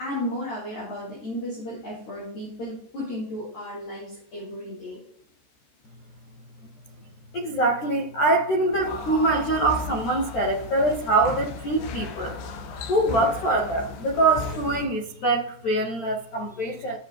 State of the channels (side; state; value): right; late; 13 ms